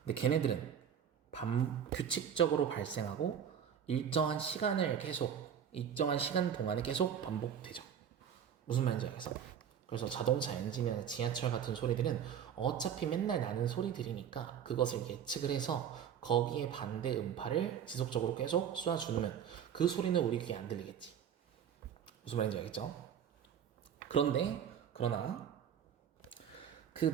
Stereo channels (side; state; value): left; quieter; 8.5 dB